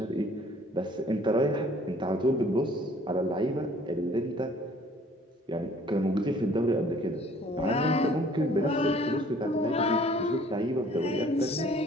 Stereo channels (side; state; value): both; normal; correlation 0.55